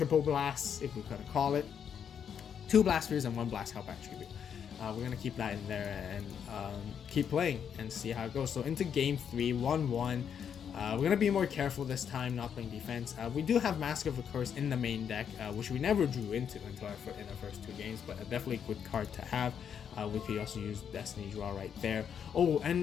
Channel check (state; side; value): quieter; right; 7.9 dB